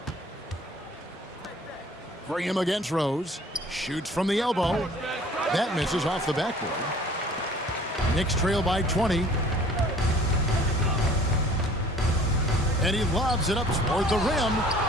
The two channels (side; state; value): both; normal; correlation 0.51